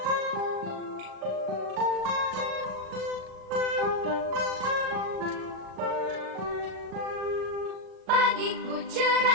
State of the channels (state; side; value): late; left; 38 ms